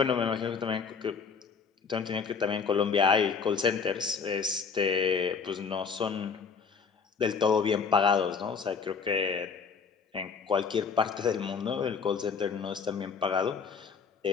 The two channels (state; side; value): quieter; right; 5.7 dB